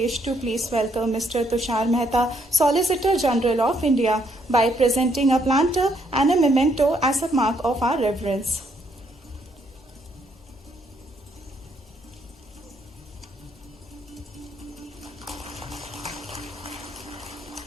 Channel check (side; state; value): both; normal; correlation 0.72